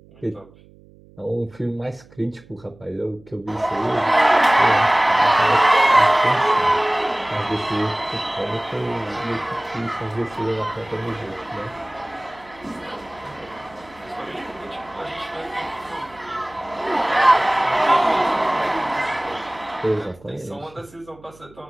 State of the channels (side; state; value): right; noise; hum, 25 dB below the sound